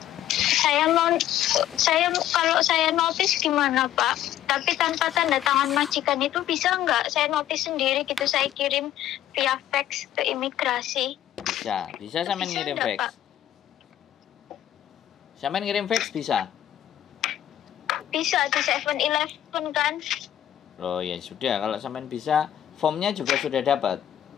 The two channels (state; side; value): quieter; right; 12.0 dB